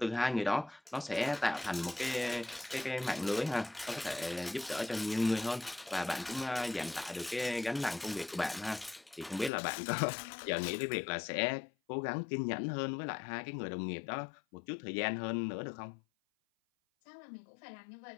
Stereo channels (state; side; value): drops out; right; at 9.5 s